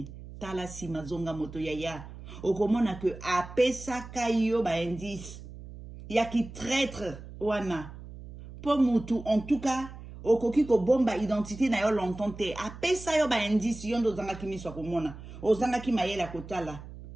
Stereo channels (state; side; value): noise; right; hum, 14 dB below the sound